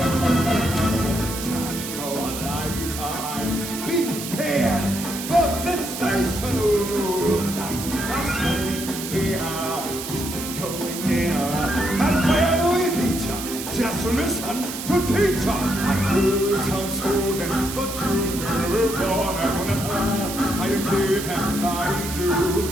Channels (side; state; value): right; noise; hiss, 8 dB below the sound